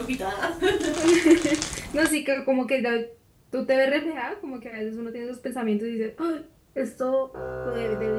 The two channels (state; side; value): identical; both; correlation 1.00